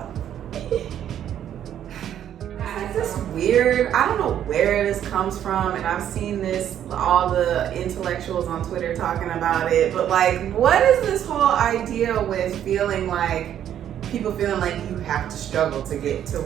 It's just weird. I don't know where this comes from, and I've seen this, all the intellectuals on Twitter talking about it, but like, what is this whole idea with feeling like, people feeling like you have to struggle to get to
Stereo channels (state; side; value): quieter; left; 10.3 dB